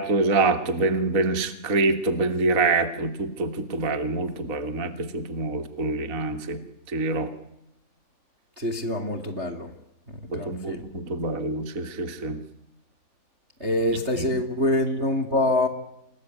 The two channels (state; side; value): late; left; 3.3 ms